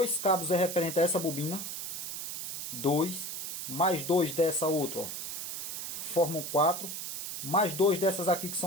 cabos é referente a essa bobina. 2, mais 2 dessa outra, ó, formam 4. Mais 2 dessas aqui, que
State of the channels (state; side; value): noise; right; hiss, 5 dB below the sound